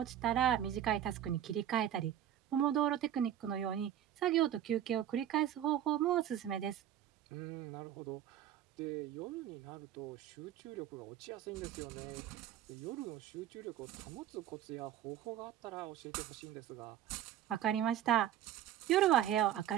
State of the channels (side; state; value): left; quieter; 11.1 dB